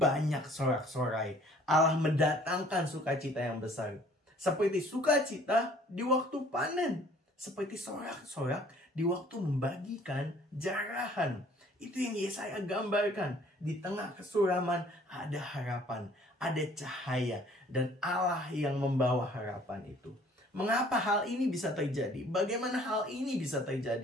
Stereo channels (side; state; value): both; normal; correlation 0.56